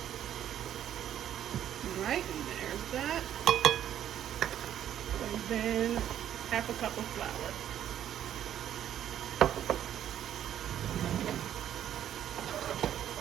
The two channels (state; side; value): quieter; left; 10.7 dB